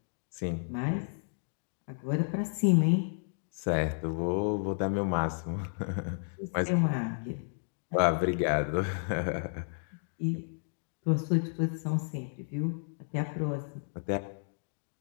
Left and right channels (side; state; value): right; silent; digital silence